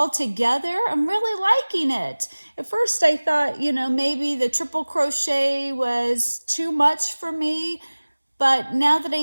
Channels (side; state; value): both; inverted; correlation -1.00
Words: together, I'm really liking it. At first I thought, maybe the triple crochet was too much for me, but now that I